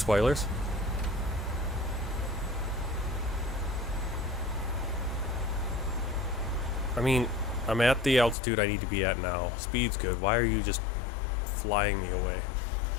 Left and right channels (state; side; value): drops out; right; at 8.3 s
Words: I mean, I'm at the altitude I need to be at now. Speed's good. Why are you just flying me away?